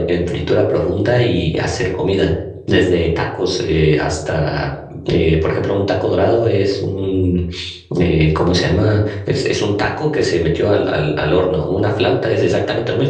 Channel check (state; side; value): identical; both; correlation 1.00